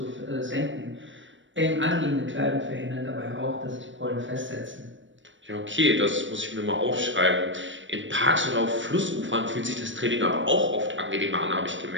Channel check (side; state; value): left; late; 0.55 ms